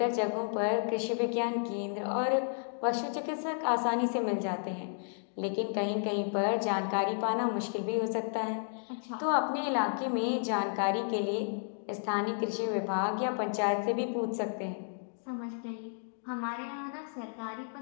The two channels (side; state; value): right; silent; digital silence